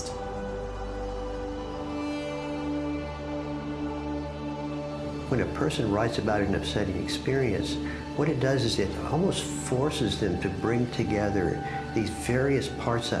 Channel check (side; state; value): both; identical; correlation 1.00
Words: When a person writes about an upsetting experience, what it does is it almost forces them to bring together these various parts